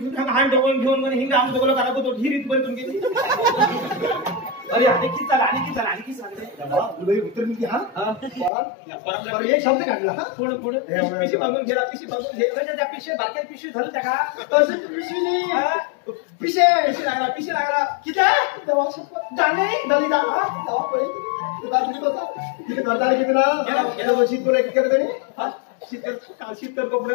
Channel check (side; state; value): right; drops out; at 8.5 s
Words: हात डोकून घेऊन हिंग आम डोकलं करा तो ही रीत बरी तुमची अरे आणखी सांगते उत्तर मी हा एक शब्द काढला हा पुढे पिशी बांधून घे त्या पिशी बारक्या पिशी झालं त्या का पिशी लागला किती तिथे करता किती ना गेल्या वर्षी तुला एक केलं शीतकर कपडे